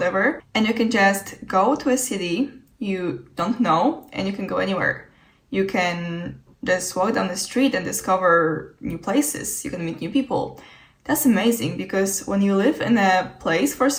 and you can just go to a city you don't know and you can go anywhere. You can just walk down the street and discover new places. You can meet new people. That's amazing because when you live in a place for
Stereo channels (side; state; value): both; identical; correlation 1.00